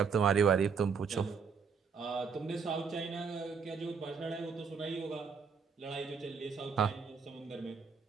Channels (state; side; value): quieter; left; 5.9 dB